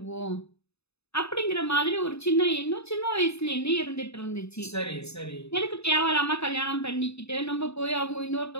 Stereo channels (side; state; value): right; late; 0.79 ms